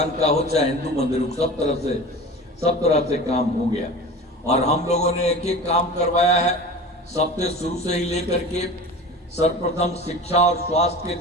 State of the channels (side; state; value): both; normal; correlation 0.35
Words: का हो चाहे हिंदू मंदिर, सब तरह से काम हो गया। और हम लोगों ने एक एक काम करवाया है, सबसे शुरू से ही लेकर के सर्वप्रथम शिक्षा और स्वास्थ्य के